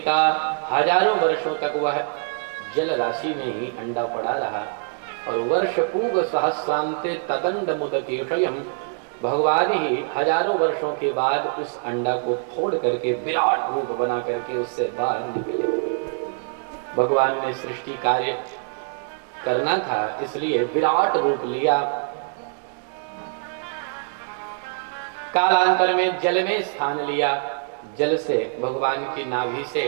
हजारों वर्षों तक वह जल राशि में ही अंडा पड़ा रहा और वर्ष पूग सहस्रांते तदंड मुदकेशयम, भगवान ही हजारों वर्षों के बाद उस अंडा को फोड़ करके विराट रूप बना करके उससे बाहर निकले। भगवान ने सृष्टि कार्य करना था, इसलिए विराट रूप लिया। कालांतर में जल में स्थान लिया। जल से भगवान की नाभि से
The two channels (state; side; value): silent; left; 60 dB below the other